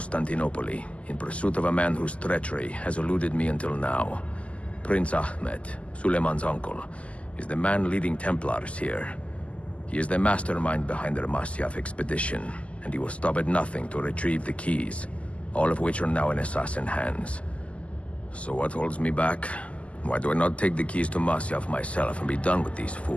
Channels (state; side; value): late; right; 0.063 ms